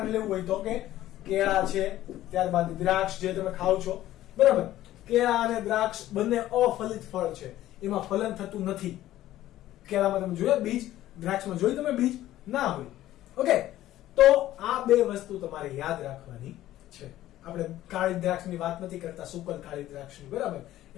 લેવું હોય તો કે કેળા છે, ત્યારબાદ દ્રાક્ષ જે તમે ખાવ છો, બરાબર. કેળા અને દ્રાક્ષ બંને અફલિત ફળ છે, એમાં ફલન થતું નથી. કેળામાં તમે જોયા બીજ, દ્રાક્ષમાં જોઈ તમે બીજ ના હોય. ઓકે, તો આ બે વસ્તુ તમારે યાદ રાખવાની છે. આપણે કાળી દ્રાક્ષની વાત નથી કરતા, સુકલ કાળી દ્રાક્ષની, બરાબર.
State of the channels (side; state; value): right; quieter; 14.1 dB